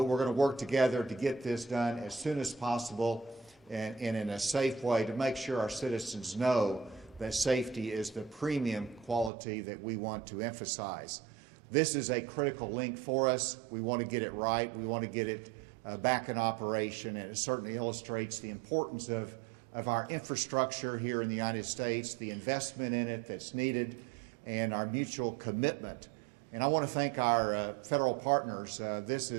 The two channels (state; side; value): drops out; left; at 9.3 s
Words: we're going to work together to get this done as soon as possible and in a safe way to make sure our citizens know that safety is the premium quality that we want to emphasize. This is a critical link for us. We want to get it right. We want to get it back in operation, and it certainly illustrates the importance of our infrastructure here in the United States, the investment in it that's needed, and our mutual commitment. And I want to thank our federal partners. This